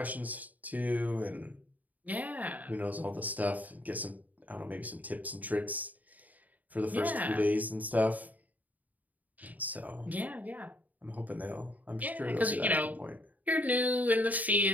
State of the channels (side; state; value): left; late; 0.077 ms